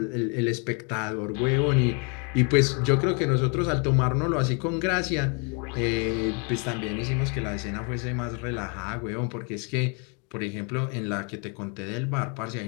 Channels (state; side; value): quieter; right; 35.3 dB